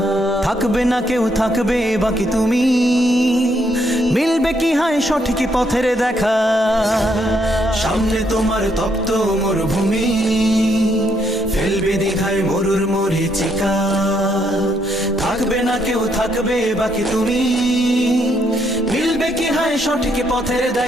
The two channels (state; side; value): normal; both; correlation 0.74